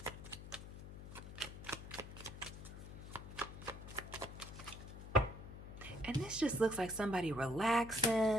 And this just looks like somebody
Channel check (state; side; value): noise; left; hum, 11 dB below the sound